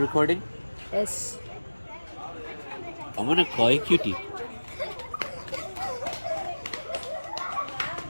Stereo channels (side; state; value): both; inverted; correlation -1.00